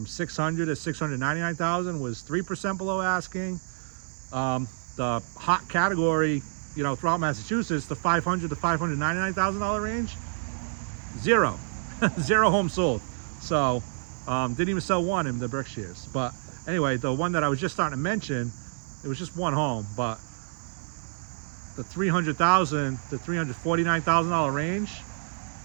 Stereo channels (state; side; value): silent; left; 59 dB below the other